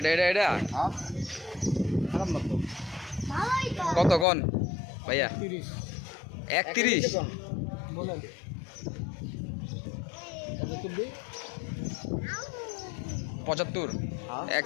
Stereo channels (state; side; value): drops out; right; at 4.2 s